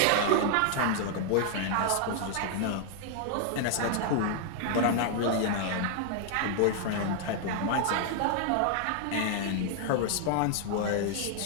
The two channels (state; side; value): different; both; correlation 0.00